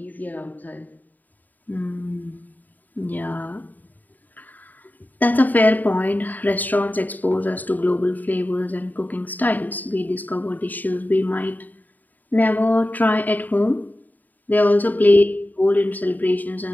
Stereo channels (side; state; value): right; late; 0.084 ms